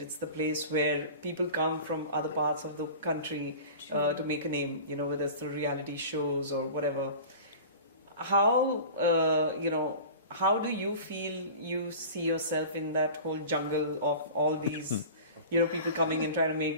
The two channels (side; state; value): both; inverted; correlation -0.37